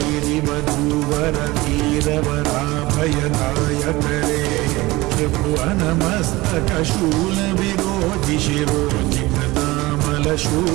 धीरवराभयदायकरे त्रिभुवनमस्तकशूल विरोधि शिरोधि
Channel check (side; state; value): left; quieter; 20.5 dB